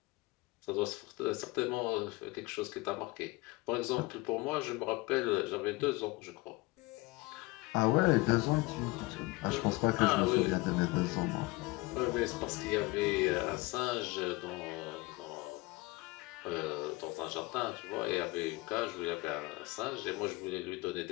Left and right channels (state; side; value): quieter; right; 22.3 dB